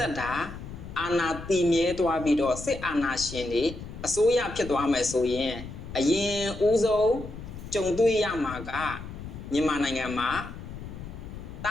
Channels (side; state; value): left; noise; rumble, 11 dB below the sound